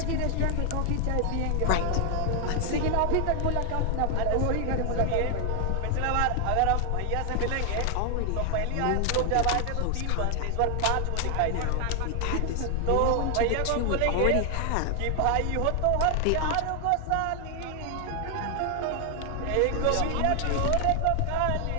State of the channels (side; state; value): both; different; correlation 0.00